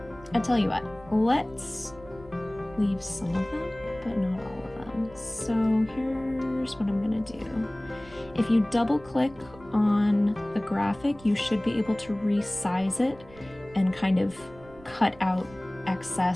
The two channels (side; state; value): right; noise; rumble, 22 dB below the sound